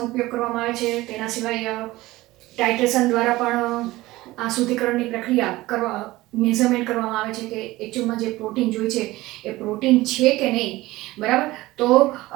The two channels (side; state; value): left; quieter; 18.6 dB